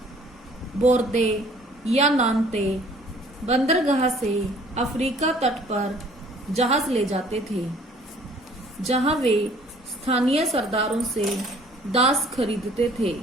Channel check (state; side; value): normal; both; correlation 0.55